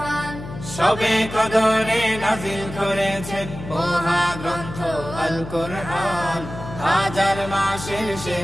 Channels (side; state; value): left; noise; hum, 11 dB below the sound